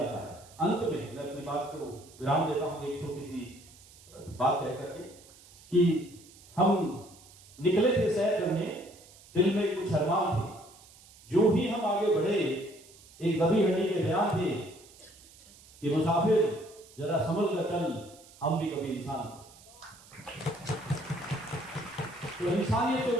है। अंत में मैं अपनी बात को विराम देता हूं एक छोटी सी बात कह करके कि हम निकले थे सैर करने, दिल में कुछ अरमान थे, जो ही हम आगे बढ़े एक दबी हड्डी के बयान थे कि मुसाफिर जरा संभल कर चल, हम भी कभी इंसान थे। तो इंसानियत के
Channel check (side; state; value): right; noise; hiss, 23 dB below the sound